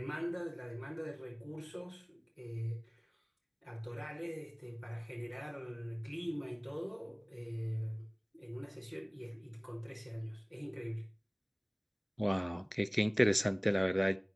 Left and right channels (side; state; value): both; identical; correlation 1.00